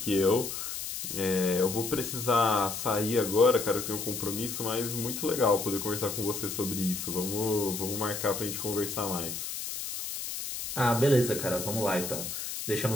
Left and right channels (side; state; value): left; noise; hiss, 5 dB below the sound